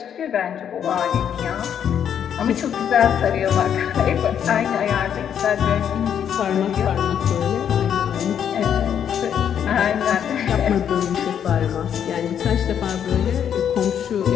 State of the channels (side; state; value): right; quieter; 8.8 dB